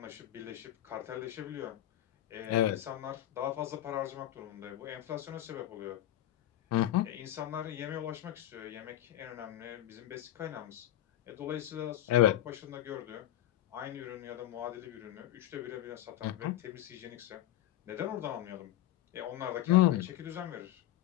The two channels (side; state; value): right; quieter; 13.4 dB